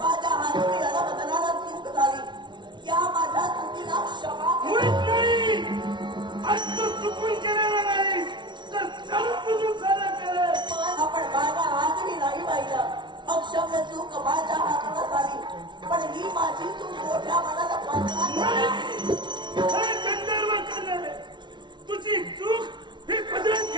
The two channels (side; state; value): left; late; 0.23 ms